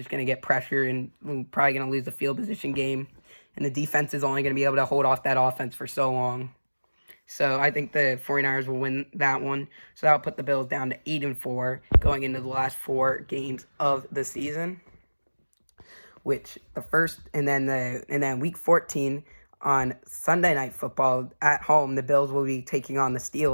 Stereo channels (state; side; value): inverted; both; correlation -1.00